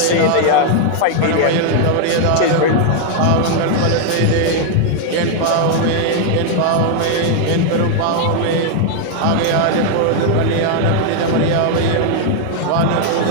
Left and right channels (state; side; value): different; both; correlation 0.00